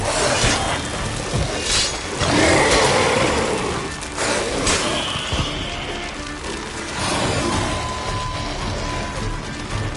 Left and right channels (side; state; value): both; identical; correlation 1.00